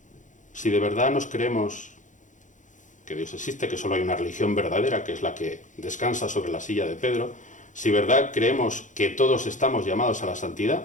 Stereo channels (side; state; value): right; late; 0.36 ms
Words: Si de verdad nos creemos que Dios existe, que solo hay una religión verdadera, que es la que descansa sobre la silla de Pedro, si de verdad creemos que todos estamos llamados a la